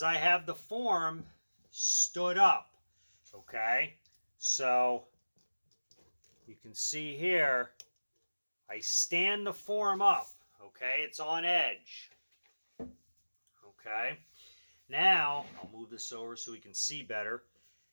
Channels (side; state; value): both; inverted; correlation -1.00